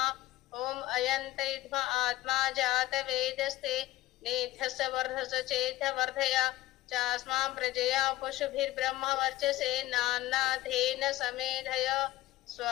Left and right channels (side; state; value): right; quieter; 17.2 dB